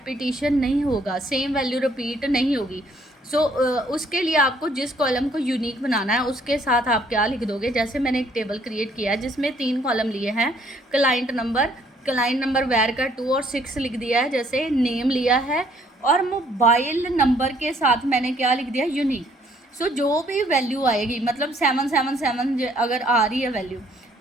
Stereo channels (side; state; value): both; normal; correlation 0.64